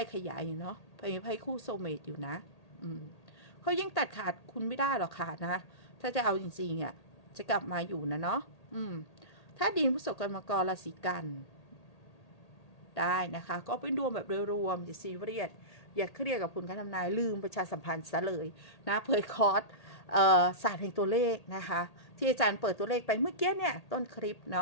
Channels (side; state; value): right; late; 1.8 ms